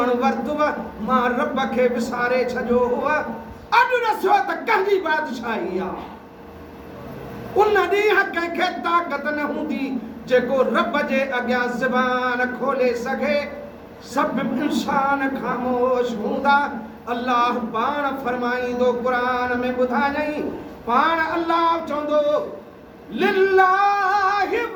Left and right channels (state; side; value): identical; both; correlation 1.00